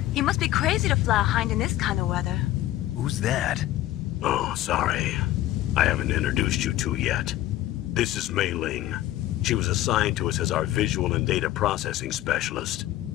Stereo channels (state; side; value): quieter; right; 14.6 dB